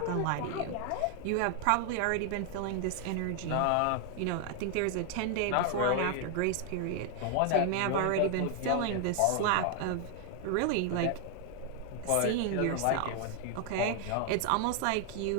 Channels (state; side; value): different; both; correlation 0.00